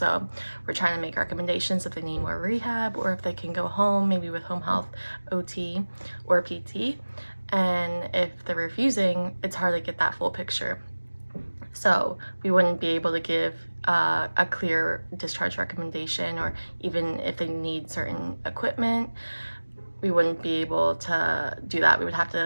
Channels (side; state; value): both; inverted; correlation -1.00